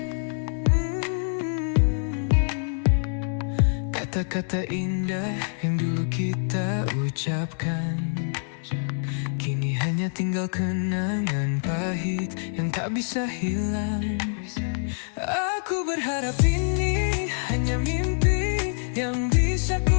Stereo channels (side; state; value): right; silent; digital silence